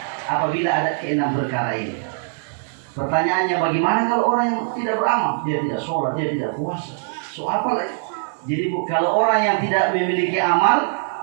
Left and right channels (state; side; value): silent; left; digital silence